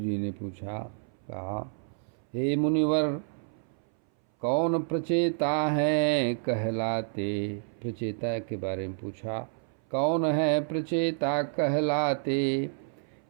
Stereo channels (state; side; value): silent; left; 58 dB below the other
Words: ने पूछा, कहा, हे मुनिवर, कौन प्रचेता है कहलाते। प्रचेता के बारे में पूछा, कौन है प्रचेता कहलाते।